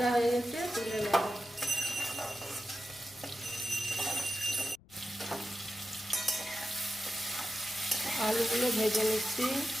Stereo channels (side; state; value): left; noise; rumble, 26 dB below the sound